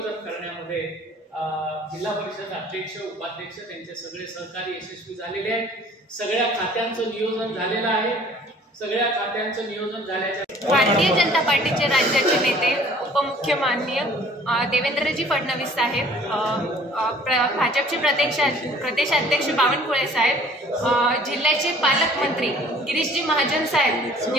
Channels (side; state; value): both; normal; correlation 0.53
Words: करण्यामध्ये जिल्हा परिषद अध्यक्ष, उपाध्यक्ष त्यांचे सगळे सहकारी यशस्वी झालेले आहेत। सगळ्या खात्यांचं नियोजन झालेलं आहे। सगळ्या खात्यांचं नियोजन झाल्याच्या भारतीय जनता पार्टीचे राज्याचे नेते उपमुख्यमान्य देवेंद्रजी फडणवीस साहेब, भाजपचे प्रदेशाध्यक्ष बावनकुळे साहेब, जिल्ह्याचे पालकमंत्री गिरीशजी महाजन साहेब